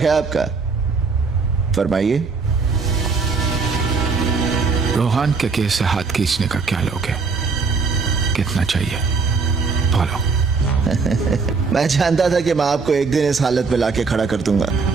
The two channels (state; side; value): quieter; left; 4.7 dB